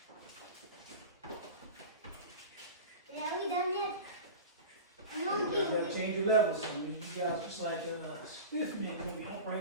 Are we done yet? No, You gotta change your levels. So you guys just like a stiff man, you're gonna be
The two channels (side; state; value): both; inverted; correlation -0.31